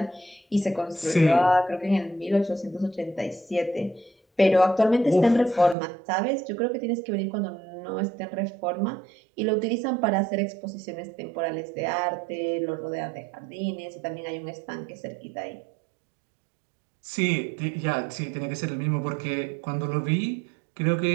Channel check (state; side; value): drops out; left; at 5.8 s